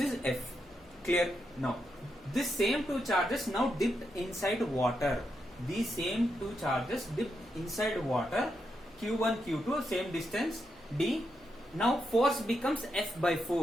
F. Clear? Now this same two charges now dipped inside water. These same two charges dipped inside water. Q1, Q2, same distance d. Now force becomes F by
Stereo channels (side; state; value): left; noise; hum, 29 dB below the sound